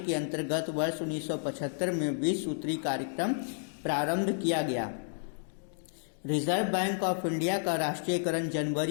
अंतर्गत वर्ष 1975 में 20 सूत्री कार्यक्रम प्रारंभ किया गया। रिजर्व बैंक ऑफ इंडिया का राष्ट्रीयकरण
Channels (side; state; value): right; silent; digital silence